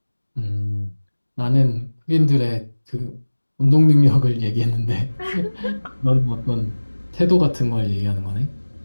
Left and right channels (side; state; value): both; inverted; correlation -1.00